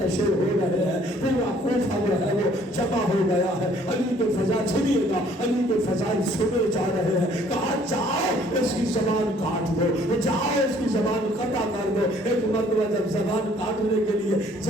ہو رہے ہیں، پورا کوفہ جو ہے وہ جمع ہو گیا ہے، علی کے فضائل سنیے گا، علی کے فضائل سنے جا رہے ہیں۔ کہا جاؤ اس کی زبان کاٹ دو، جاؤ اس کی زبان قطع کر دو۔ ایک مرتبہ جب زبان کاٹنے کے لیے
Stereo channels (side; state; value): both; normal; correlation 0.59